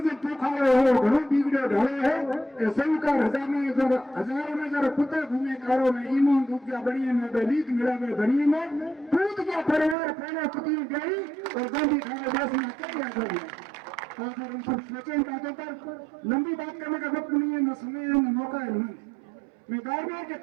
पोखारो हो, घणो बिगड़ो ढालो है, सौकार हजारों में जरा कुत्ते घूमे कारो में, ईमान डूब गया बड़िए में, लीक मिला में बड़िए में, कूद गया परिवार फैला कुतियों गई और गांधी खाने देश में क्या कर दिया। और हम सब सोचे बातों पर। लंबी बात करने का वक्त नहीं है, न समय है, न मौका है। मैं बार-बार के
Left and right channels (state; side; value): drops out; left; at 10.0 s